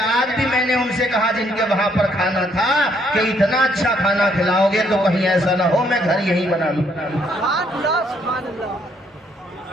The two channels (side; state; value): both; normal; correlation 0.69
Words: آج بھی میں نے ان سے کہا جن کے وہاں پر کھانا تھا کہ اتنا اچھا کھانا کھلاؤ گے تو کہیں ایسا نہ ہو میں گھر یہی بنا لوں.